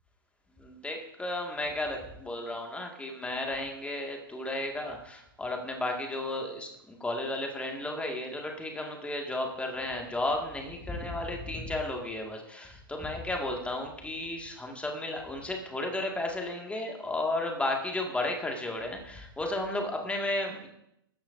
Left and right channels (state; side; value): normal; both; correlation 0.56